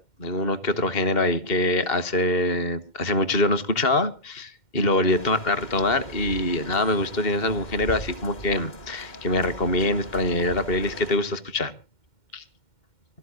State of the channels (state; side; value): late; right; 2.1 ms